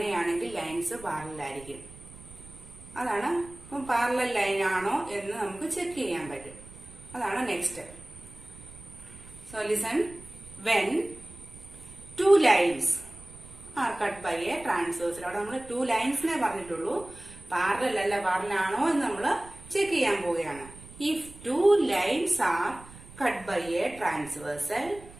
ലൈൻസ് പാരലൽ ആയിരിക്കും. അതാണ് പാരലൽ ലൈൻ ആണോ എന്ന് നമുക്ക് ചെക്ക് ചെയ്യാൻ പറ്റും. അതാണ് next. So listen, when 2 lines are cut by a transversal. അവിടെ നമ്മൾ 2 ലൈൻസിനെ പറഞ്ഞിട്ടുള്ളൂ, പാരലൽ അല്ല പാരലൽ ആണോ എന്ന് നമ്മൾ ചെക്ക് ചെയ്യാൻ പോവുകയാണ്. If 2 lines are cut by a transversal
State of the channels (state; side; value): noise; right; rumble, 19 dB below the sound